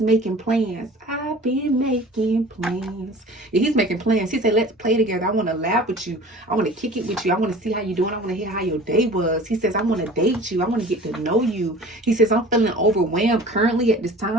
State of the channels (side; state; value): both; normal; correlation 0.43